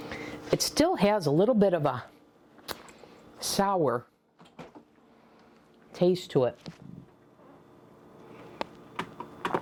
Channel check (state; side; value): identical; both; correlation 1.00